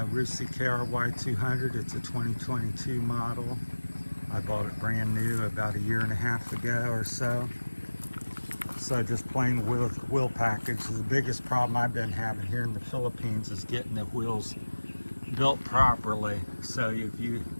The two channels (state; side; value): inverted; both; correlation -1.00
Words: Rusi KRY 200. It's a 2022 model. I bought it brand new about 1.5 years ago or so. So just plain wheel package. The biggest problem I've been having here in the Philippines is getting the wheels built properly. So if you